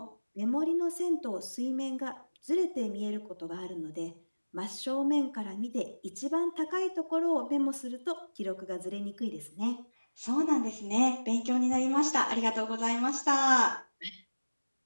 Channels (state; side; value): inverted; both; correlation -1.00